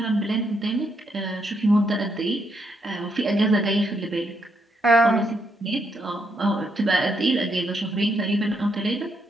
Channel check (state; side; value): normal; both; correlation 0.77